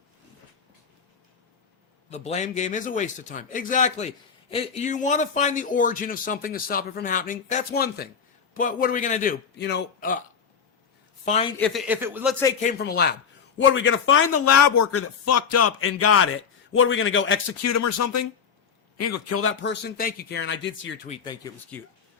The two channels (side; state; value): right; quieter; 6.7 dB